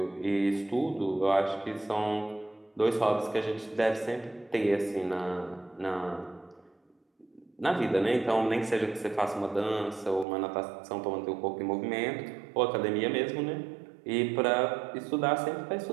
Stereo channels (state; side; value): drops out; left; at 10.2 s